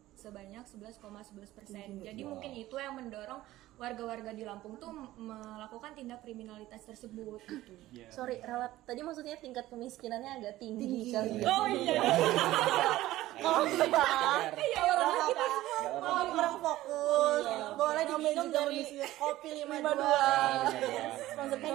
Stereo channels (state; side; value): quieter; left; 15.9 dB